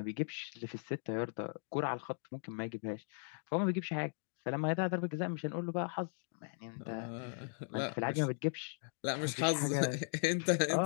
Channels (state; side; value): silent; right; digital silence